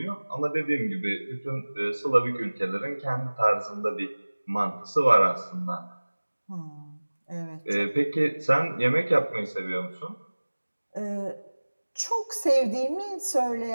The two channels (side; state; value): both; inverted; correlation -1.00